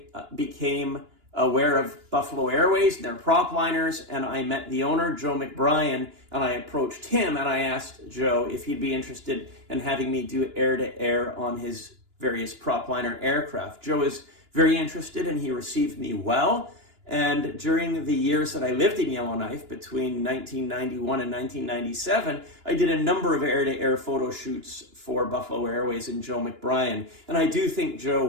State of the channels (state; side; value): late; left; 2.9 ms